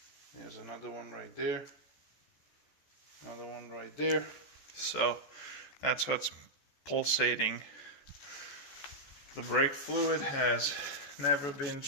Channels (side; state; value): right; late; 14 ms